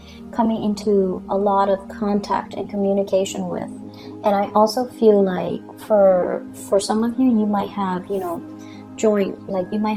coming into a lot of contact and communication with. And I also feel like for some of you, you might have, you know, you might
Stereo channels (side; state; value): both; identical; correlation 1.00